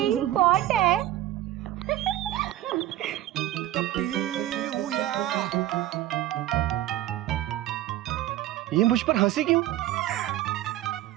പോട്ടെ. ये मुझ पर हंसी क्यों?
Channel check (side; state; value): left; quieter; 14.1 dB